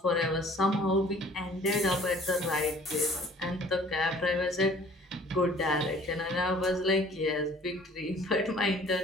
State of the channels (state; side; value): normal; both; correlation 0.52